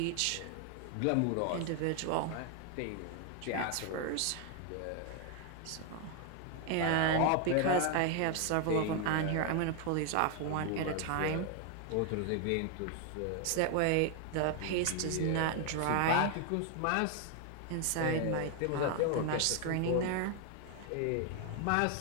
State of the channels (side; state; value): both; different; correlation 0.01